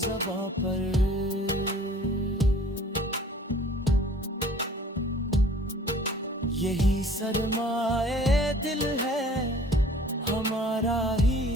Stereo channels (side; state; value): both; normal; correlation 0.51